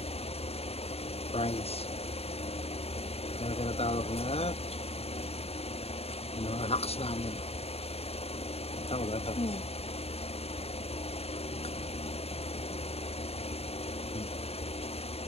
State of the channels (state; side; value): late; right; 0.29 ms